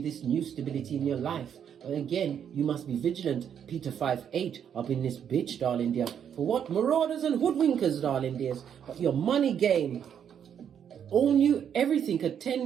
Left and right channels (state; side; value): quieter; left; 8.5 dB